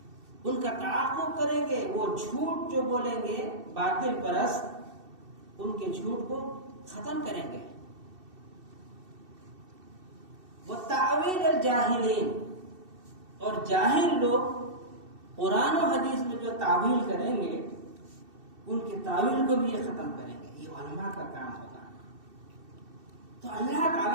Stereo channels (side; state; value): left; late; 2.7 ms